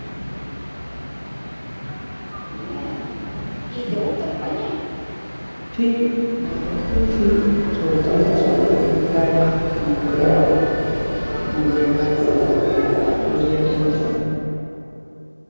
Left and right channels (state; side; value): inverted; both; correlation -1.00